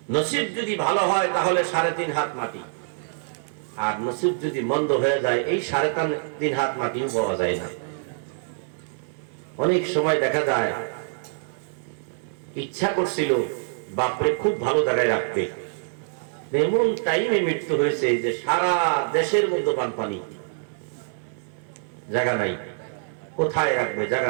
নসিব যদি ভালো হয় তাহলে 3.5 হাত মাটি, আর নসিব যদি মন্দ হয়ে যায় এই 3.5 হাত মাটিও পাওয়া যায় না। অনেক সময় দেখা যায় ইচ্ছা করছিল বাপরে খুব ভালো জায়গায় রাখবে, এমন টাইমে মৃত্যু হয়েছে যে সারা দেশের মধ্যে বানপানি, জায়গা নাই, কোথায় রাখবে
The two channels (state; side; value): silent; left; 62 dB below the other